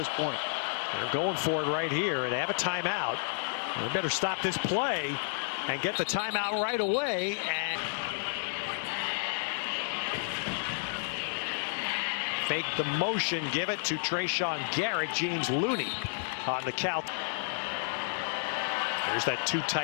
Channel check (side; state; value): right; silent; 57 dB below the other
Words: point. They're going for it right here, and they have a timeout. They better stop this play and get the timeout right away. And fake the motion, give it to Trayshawn Garrett. James Looney on the count. There's that two